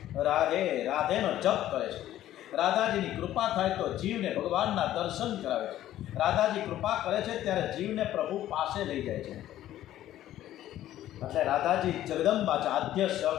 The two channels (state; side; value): quieter; right; 13.1 dB